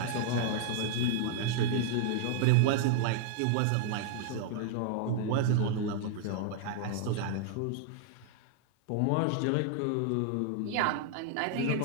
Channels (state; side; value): different; both; correlation 0.00